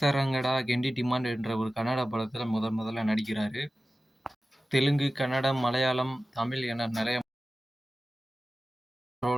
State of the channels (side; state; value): both; normal; correlation 0.95